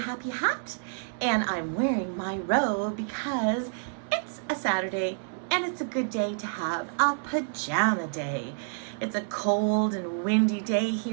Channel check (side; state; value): left; silent; 58 dB below the other